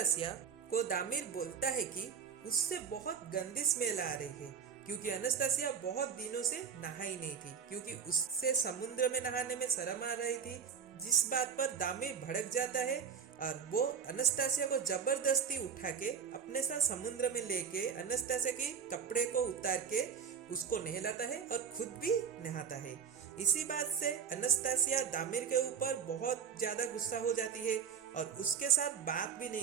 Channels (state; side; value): quieter; left; 7.0 dB